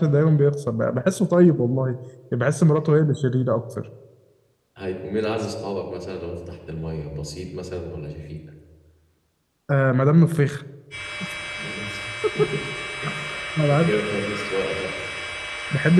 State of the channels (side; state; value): both; identical; correlation 1.00